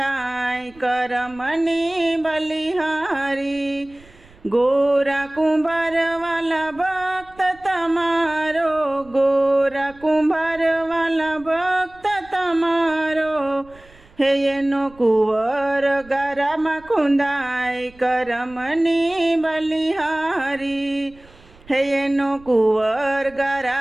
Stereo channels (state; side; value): noise; right; rumble, 25 dB below the sound